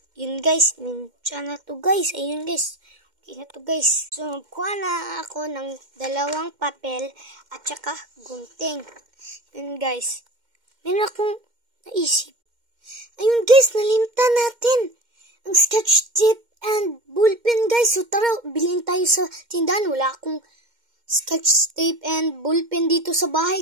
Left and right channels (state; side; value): late; left; 2.1 ms